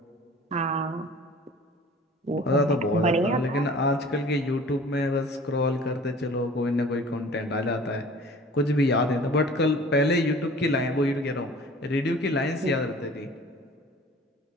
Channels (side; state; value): both; normal; correlation 0.46